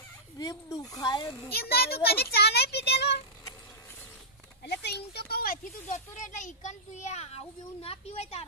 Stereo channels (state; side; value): normal; both; correlation -0.14